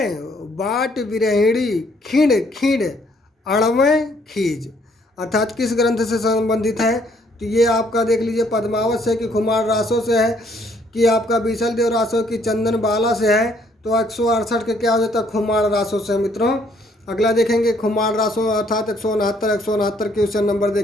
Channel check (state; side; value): normal; both; correlation 0.66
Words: बाट विरहिणी, खिंड खिंड अड़वें खीज। अर्थात किस ग्रंथ से संबंधित है? तो ये आपका देख लीजिए, पद्मावत से कि कुमार रासों से है कि आपका बीसल देव रासो की चंदन बाला से है, तो 168 के क्या हो जाता है, खुमार रासो से मित्रों। अगला देखेंगे खुमार रासो अर्थात 169 के उससे नंबर